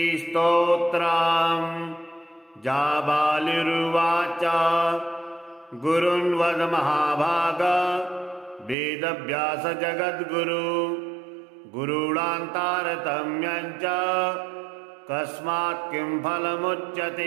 जाबालिरुवाच गुरुन् वद महाभाग वेदव्यास जगद्गुरु गुरूणान्तारतम्यं च कस्मात् किं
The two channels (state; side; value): drops out; left; at 8.8 s